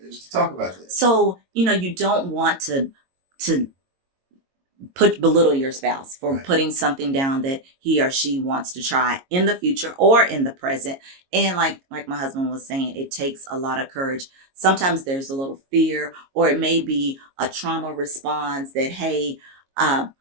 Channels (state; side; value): late; left; 22 ms